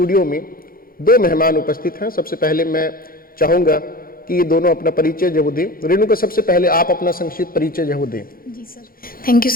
में दो मेहमान उपस्थित हैं। सबसे पहले मैं चाहूँगा कि ये दोनों अपना परिचय जो दें। रेणुका, सबसे पहले आप अपना संक्षिप्त परिचय जो दें। जी sir, thank you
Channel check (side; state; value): right; late; 0.42 ms